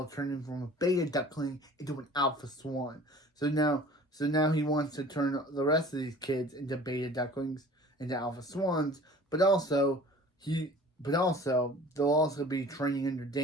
turned him from a beta duckling into an alpha swan. So now he wants to turn the rest of these kids into beta ducklings, into alpha swans. But also they'll also be training under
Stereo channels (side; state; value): both; normal; correlation 0.45